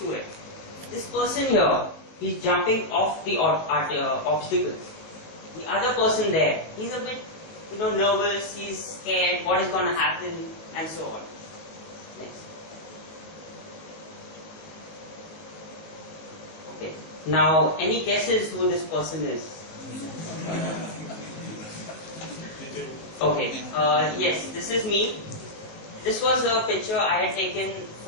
it. This person here, he's jumping off the obstacle. The other person there, he's a bit, nervous, he's scared, what is going to happen, and so on. Next. Okay. Now, any guesses who this person is? Okay. Yes, this is me. This was a picture I had taken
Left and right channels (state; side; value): late; right; 19 ms